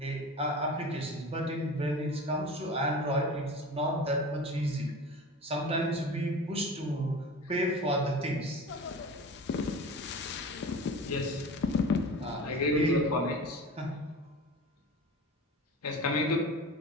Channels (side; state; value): both; normal; correlation 0.34